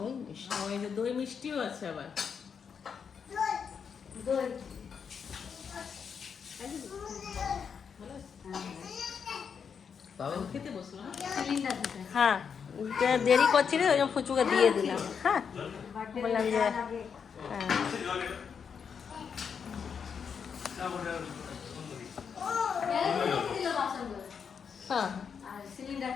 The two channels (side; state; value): right; quieter; 6.7 dB